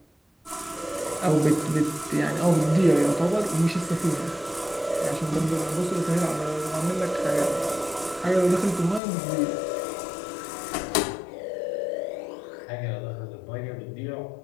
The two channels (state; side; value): drops out; right; at 9.0 s